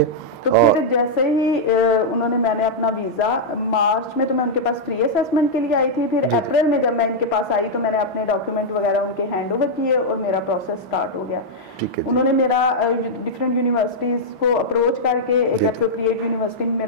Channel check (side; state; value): both; normal; correlation -0.06